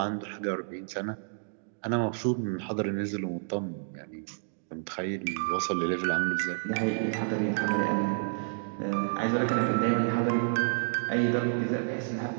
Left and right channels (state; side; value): silent; left; digital silence